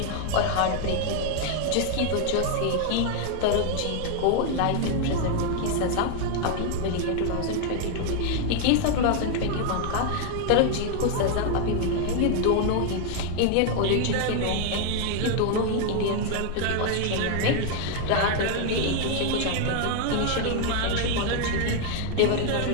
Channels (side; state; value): both; different; correlation 0.00